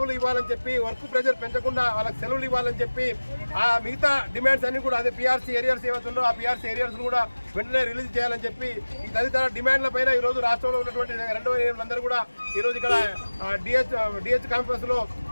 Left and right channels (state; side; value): inverted; both; correlation -1.00